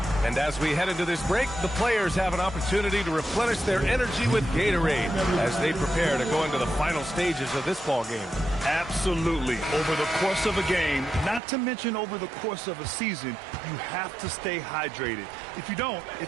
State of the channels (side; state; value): left; drops out; at 11.4 s